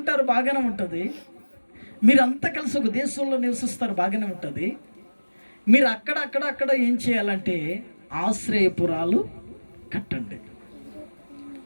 బాగానే ఉంటుంది. మీరంతా కలిసి ఒక దేశంలో నివసిస్తారు, బాగానే ఉంటుంది. మీరు అక్కడ అక్కడ అక్కడ ఏం చేయాలంటే ఆశ్రయపురాలు కట్టండి.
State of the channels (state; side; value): inverted; both; correlation -1.00